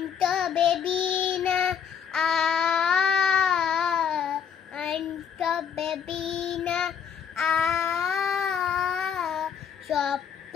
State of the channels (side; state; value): right; quieter; 7.4 dB